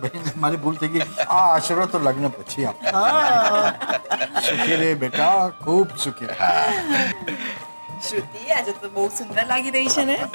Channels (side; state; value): both; inverted; correlation -1.00